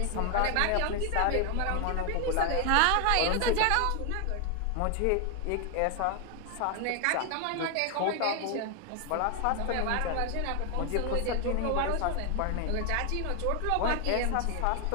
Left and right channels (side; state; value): both; different; correlation 0.00